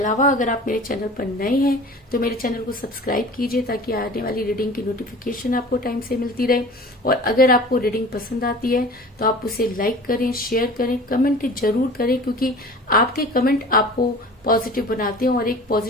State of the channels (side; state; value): both; normal; correlation 0.41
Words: अगर आप मेरे चैनल पर नए हैं तो मेरे चैनल को सब्सक्राइब कीजिए ताकि आने वाली रीडिंग की नोटिफिकेशन आपको टाइम से मिलती रहे। और अगर आपको रीडिंग पसंद आती है तो आप उसे लाइक करें, शेयर करें, कमेंट जरूर करें, क्योंकि आपके कमेंट आपको पॉजिटिव बनाते हैं और एक